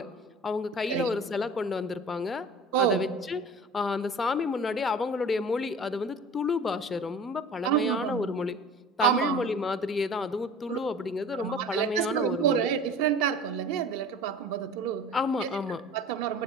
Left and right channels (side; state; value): both; normal; correlation 0.42